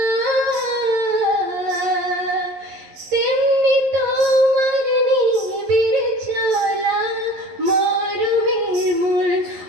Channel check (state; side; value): late; left; 11 ms